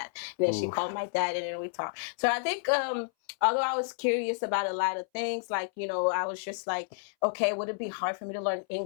And then she called my dad and then we talked. So I think although I was curious about a lot of things, like, I was just like, okay, would it be hard for me to learn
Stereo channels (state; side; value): silent; right; 58 dB below the other